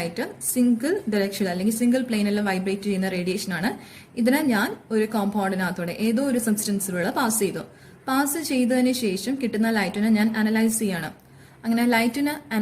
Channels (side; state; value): both; identical; correlation 1.00